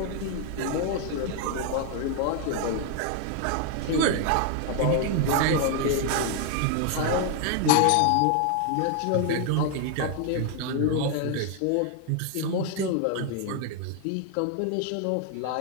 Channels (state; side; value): different; both; correlation 0.00